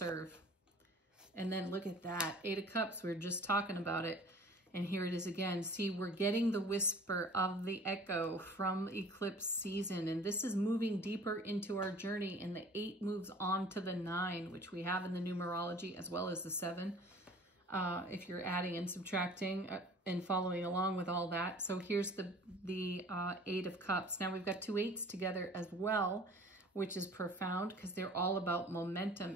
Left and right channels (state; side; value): normal; both; correlation 0.47